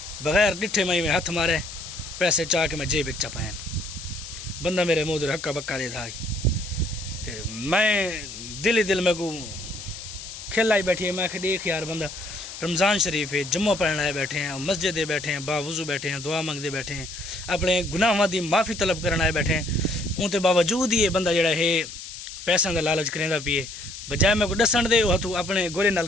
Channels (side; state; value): left; noise; hiss, 11 dB below the sound